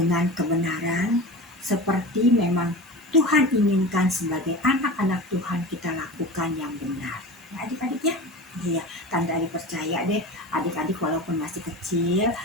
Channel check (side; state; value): both; normal; correlation 0.31